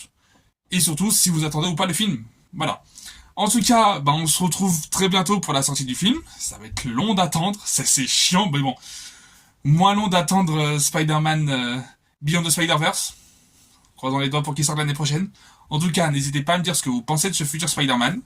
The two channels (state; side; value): identical; both; correlation 1.00